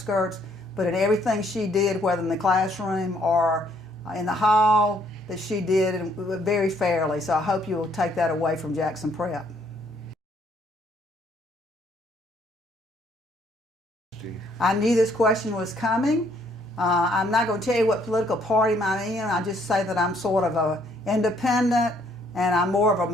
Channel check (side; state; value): both; normal; correlation 0.66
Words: But in everything she did, whether in the classroom or in the hall, that she did very fairly. So I hope you will take that away from Jackson Prep. I knew this question was coming. I'm not going to tell you what political party I'm in. I just say that I'm sort of an independent and I'm more of a